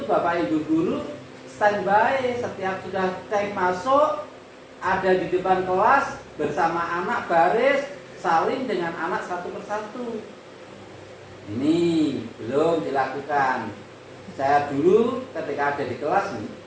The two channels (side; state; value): both; identical; correlation 1.00